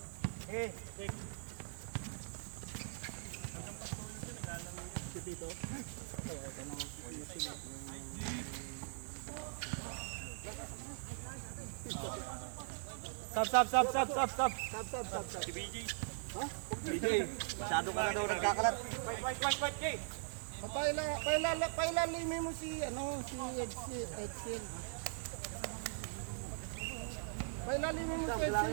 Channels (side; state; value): left; silent; digital silence